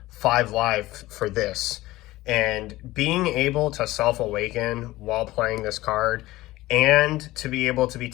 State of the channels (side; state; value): right; quieter; 17.8 dB